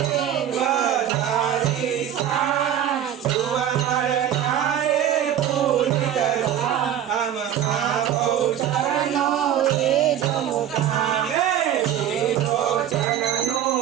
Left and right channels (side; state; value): left; quieter; 10.3 dB